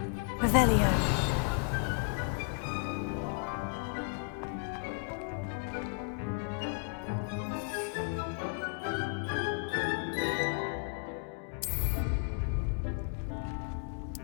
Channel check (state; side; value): quieter; right; 39.1 dB